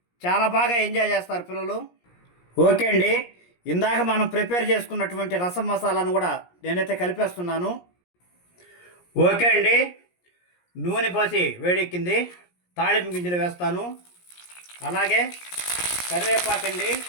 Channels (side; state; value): right; late; 17 ms